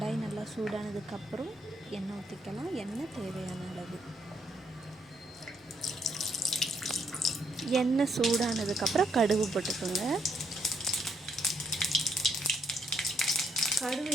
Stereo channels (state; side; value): normal; both; correlation 0.73